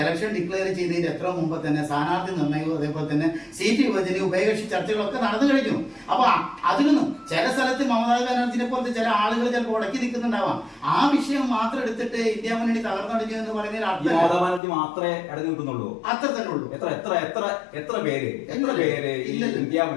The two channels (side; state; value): right; drops out; at 14.6 s